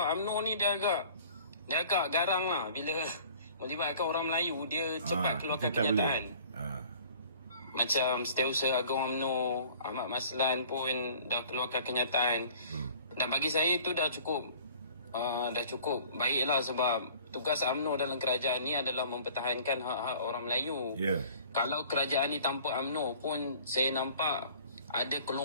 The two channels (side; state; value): both; inverted; correlation -0.50